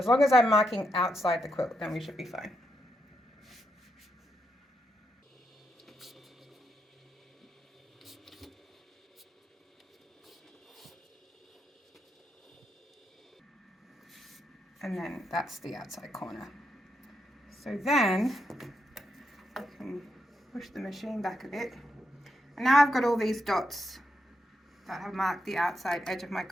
long as I'm marking outside the quilt, then we should be fine. And then that's the outside corner. So then I can push the machine back a bit. And now I've got all these dots that have marked the outside edge of my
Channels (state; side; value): normal; both; correlation 0.82